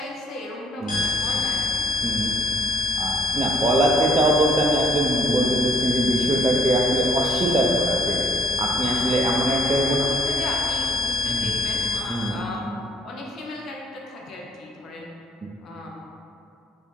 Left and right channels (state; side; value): normal; both; correlation 0.56